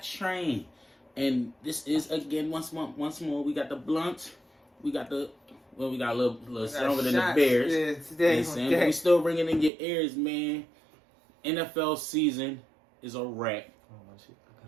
And this is, again, once more, we got the Bluntz. We got a little stronger than the Bears. Yeah, today. But we still ringing in your ears, man. NFL season is a wrap. Oh, my shit.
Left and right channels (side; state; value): left; drops out; at 9.7 s